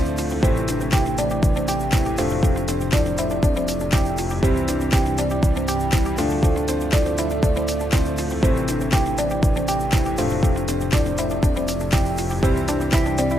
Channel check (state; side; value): normal; both; correlation 0.83